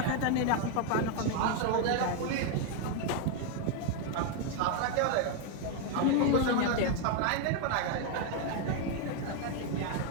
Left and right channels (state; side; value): different; both; correlation 0.01